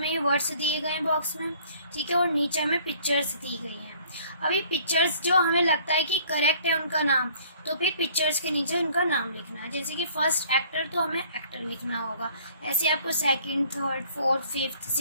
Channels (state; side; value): inverted; both; correlation -0.56